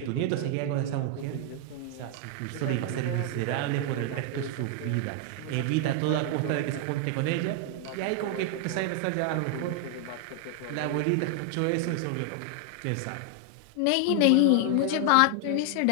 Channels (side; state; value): both; different; correlation 0.00